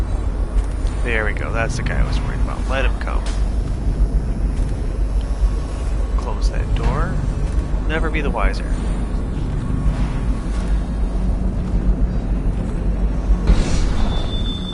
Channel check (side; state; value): both; identical; correlation 1.00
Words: There we go, that's the guy I was worried about. Let him come. Close that door. Never be the wiser.